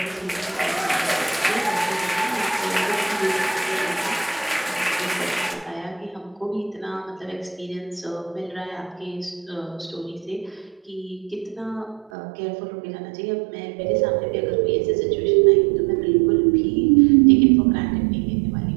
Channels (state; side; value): drops out; left; at 12.1 s